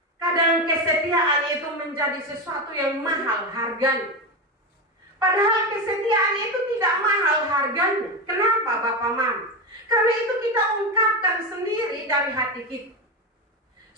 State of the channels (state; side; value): normal; both; correlation 0.16